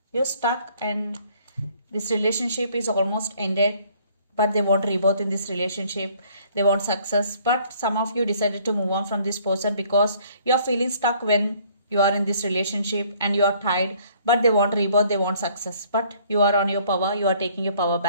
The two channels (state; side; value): inverted; both; correlation -0.60